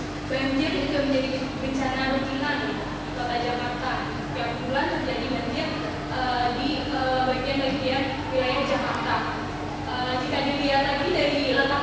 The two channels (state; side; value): identical; both; correlation 1.00